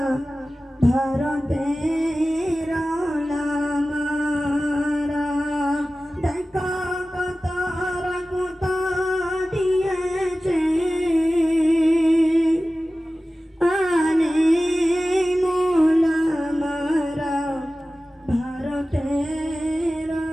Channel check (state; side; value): normal; both; correlation 0.96